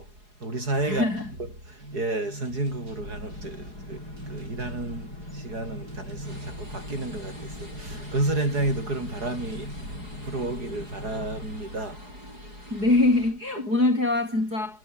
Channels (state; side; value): late; left; 4.8 ms